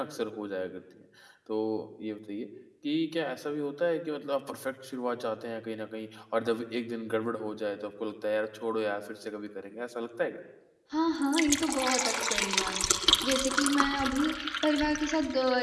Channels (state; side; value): identical; both; correlation 1.00